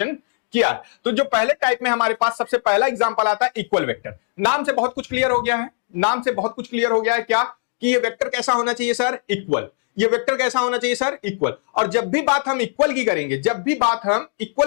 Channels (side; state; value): right; silent; digital silence